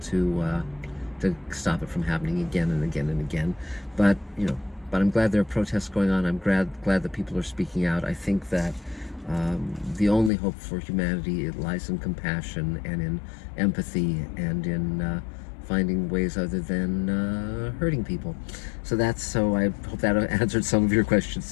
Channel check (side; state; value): right; drops out; at 10.3 s